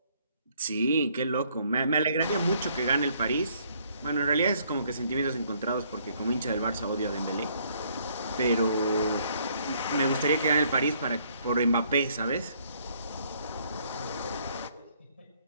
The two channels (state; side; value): inverted; both; correlation -0.66